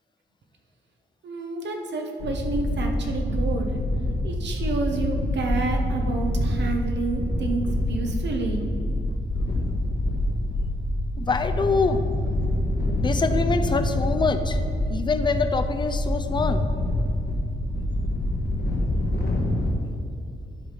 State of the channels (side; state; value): both; normal; correlation 0.75